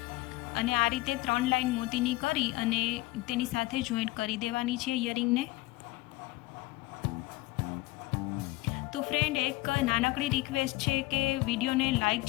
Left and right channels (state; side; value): quieter; right; 20.2 dB